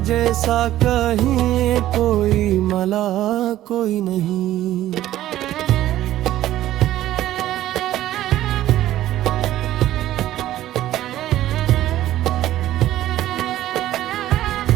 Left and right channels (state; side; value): quieter; left; 13.8 dB